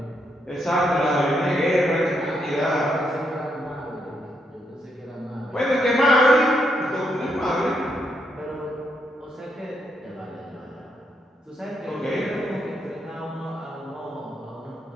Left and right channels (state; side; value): normal; both; correlation 0.78